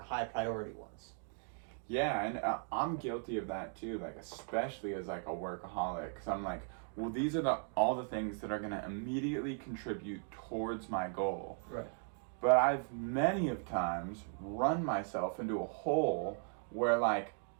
high priority ones. Yeah, and I'm guilty of that too. Like especially as like a workaholic, because I'm like, well, these are all the things that are going to immediately contribute towards my goal. Right. But I've many of times run myself into a hole where like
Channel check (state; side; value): silent; left; 53 dB below the other